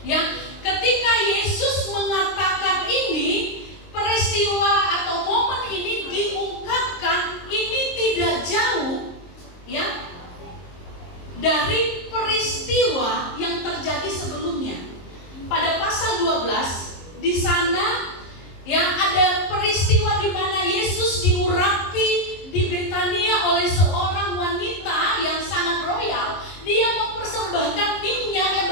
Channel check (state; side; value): late; right; 23 ms